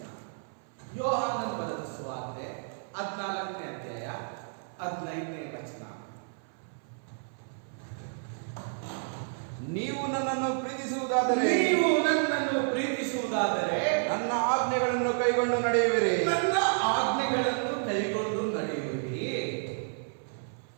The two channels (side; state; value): left; silent; 58 dB below the other